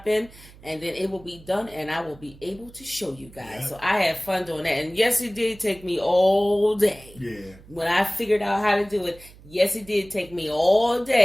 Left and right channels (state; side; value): noise; right; hum, 22 dB below the sound